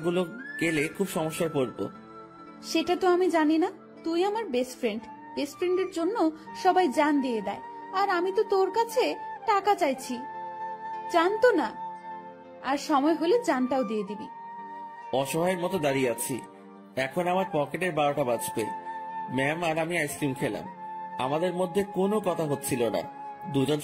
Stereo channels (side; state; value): both; identical; correlation 1.00